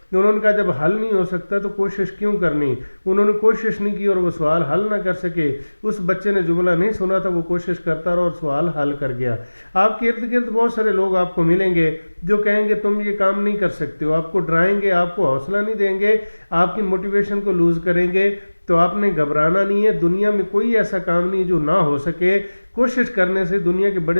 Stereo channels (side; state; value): both; inverted; correlation -1.00